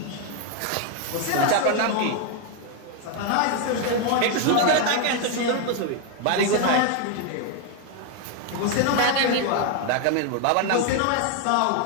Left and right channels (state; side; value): different; both; correlation 0.01